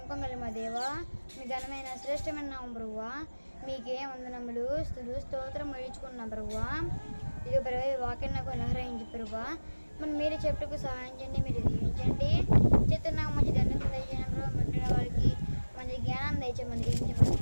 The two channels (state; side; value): inverted; both; correlation -1.00